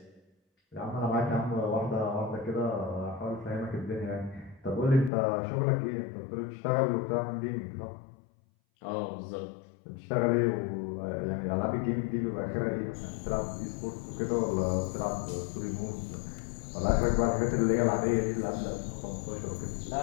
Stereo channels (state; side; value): drops out; right; at 5.1 s